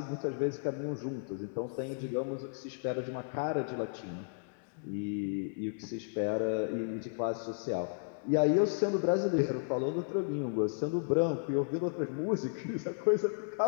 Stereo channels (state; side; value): silent; right; digital silence